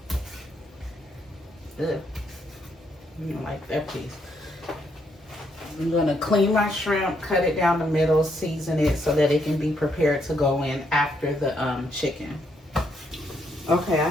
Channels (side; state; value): both; normal; correlation 0.75